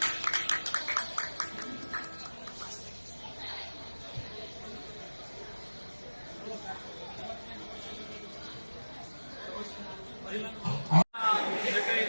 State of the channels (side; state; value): both; inverted; correlation -1.00